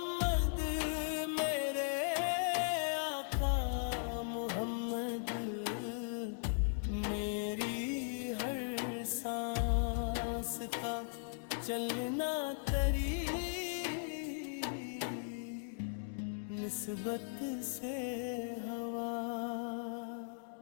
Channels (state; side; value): silent; right; digital silence